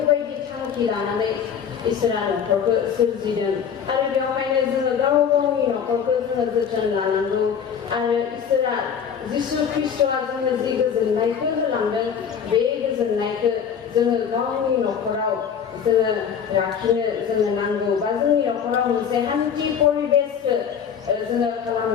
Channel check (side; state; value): right; quieter; 7.6 dB